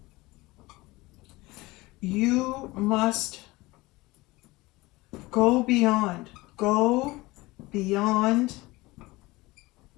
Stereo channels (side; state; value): right; quieter; 21.0 dB